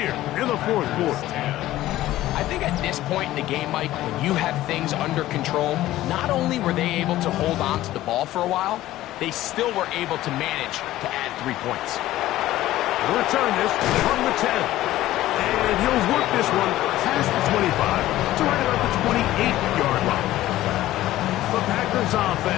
in the 4th quarter. I think at this point in the game, Mike, when you have things under control, not only were they able to hold on to the ball for a while, they still were able to manage to add 3 points. He'll return this from the 10. And he'll work this one past the 25 to right about the 28-yard line. The Packers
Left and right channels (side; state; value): right; quieter; 15.1 dB